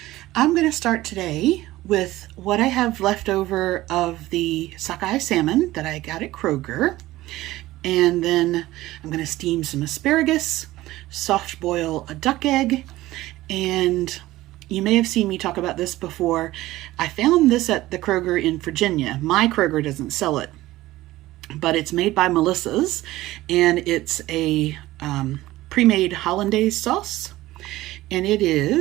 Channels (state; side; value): quieter; left; 16.9 dB